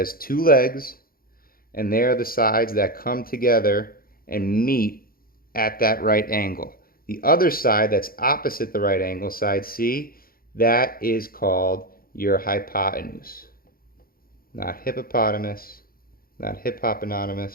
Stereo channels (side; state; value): right; late; 0.43 ms